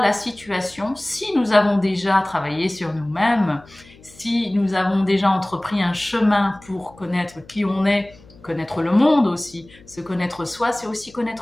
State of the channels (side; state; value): left; noise; hum, 24 dB below the sound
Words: situation, si nous avons déjà travaillé sur nous-mêmes, si nous avons déjà entrepris un chemin pour connaître qui on est, connaître le monde aussi, se connaître soi, c'est aussi